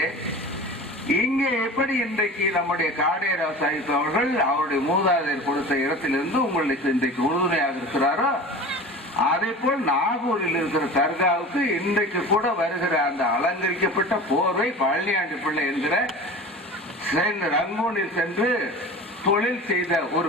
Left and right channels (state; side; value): normal; both; correlation 0.35